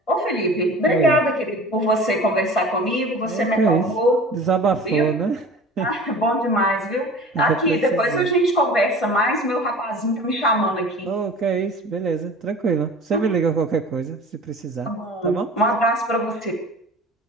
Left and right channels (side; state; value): both; normal; correlation 0.40